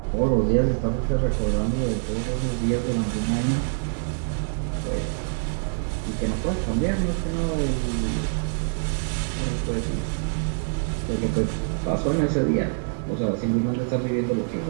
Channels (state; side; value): silent; left; digital silence